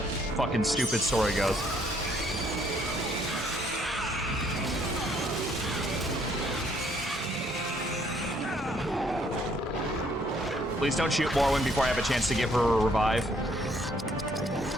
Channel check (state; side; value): normal; both; correlation 0.66